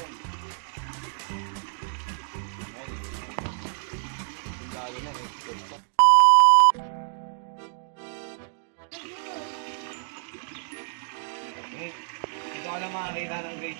Lalo na eh. Dito ka lang makakita ng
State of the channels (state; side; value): silent; left; digital silence